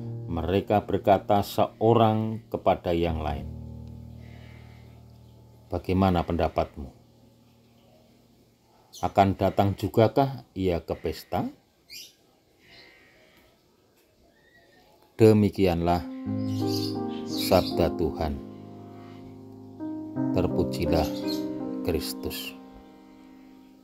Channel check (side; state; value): both; identical; correlation 1.00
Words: mereka berkata seorang kepada yang lain, "Bagaimana pendapatmu? Akan datang jugakah ia ke pesta?" Demikianlah sabda Tuhan. Terpujilah Kristus.